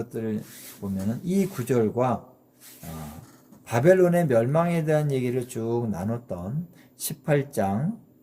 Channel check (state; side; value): identical; both; correlation 1.00